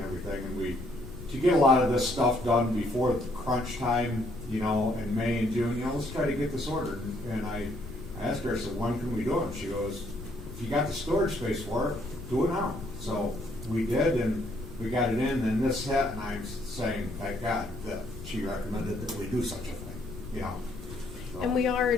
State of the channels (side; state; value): left; noise; rumble, 12 dB below the sound